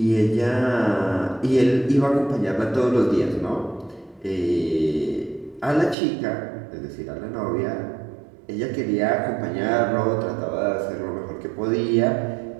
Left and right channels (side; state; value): left; drops out; at 6.0 s